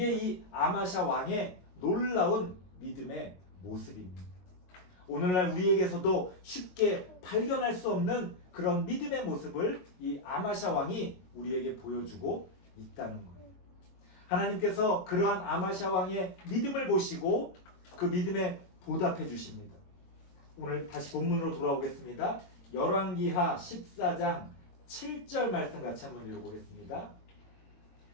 이 아마샤 왕의 놀라운 믿음의 모습입니다. 오늘날 우리에게서도 쉽게 발견할 수 없는 그런 믿음의 모습을 이 아마샤 왕이 우리에게 보여주고 있다는 거예요. 하나님께서 그러한 아마샤 왕의 믿음을 보시고 그 믿음에 보답해 주십니다. 오늘 다시 본문으로 돌아오겠습니다. 열왕기하 14장 7절 말씀 같이 한번 읽어보겠습니다.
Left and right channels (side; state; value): right; late; 22 ms